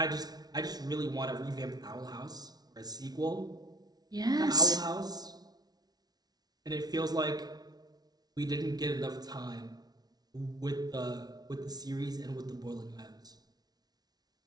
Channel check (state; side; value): late; left; 0.19 ms